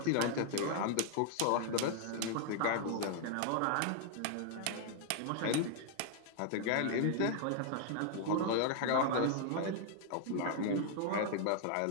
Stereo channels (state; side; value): different; both; correlation 0.00